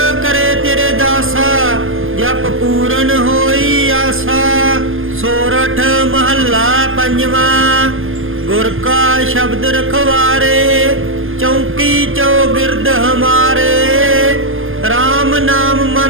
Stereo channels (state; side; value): late; left; 0.59 ms